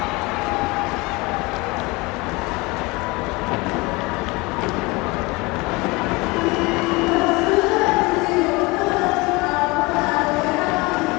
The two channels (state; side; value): quieter; right; 24.4 dB